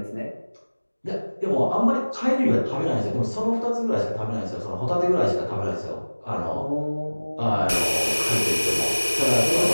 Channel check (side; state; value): both; inverted; correlation -1.00